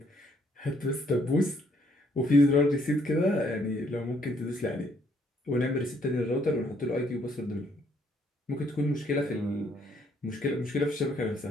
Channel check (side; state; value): both; normal; correlation 0.68